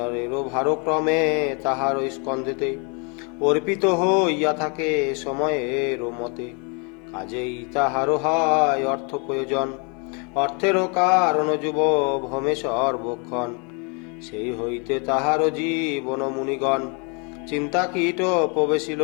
ভারক্রমে তাহার স্কন্ধেতে অর্পিত হইয়া থাকে সময়ের মতে। কাজেই তাহারও হয় অর্থ প্রয়োজন, অর্থেরও কারণ যুব ভমে সর্বক্ষণ। সেই হইতে তাহারও জীবন মুনিগণ চিন্তা কীট প্রবেশিল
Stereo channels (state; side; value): quieter; right; 34.8 dB